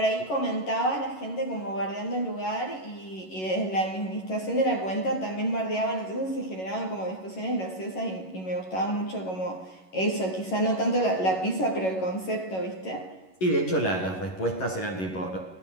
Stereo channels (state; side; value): late; right; 11 ms